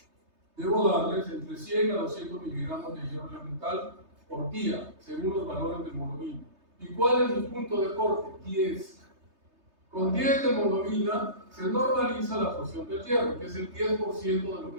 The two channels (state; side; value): late; left; 3.3 ms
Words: debo darles entre 100 a 200 miligramos de hierro elemental por día, según los valores de hemoglobina. ¿Y cuál es mi punto de corte? 10. Con 10 de hemoglobina se normaliza la absorción del hierro, que es el 10% de lo que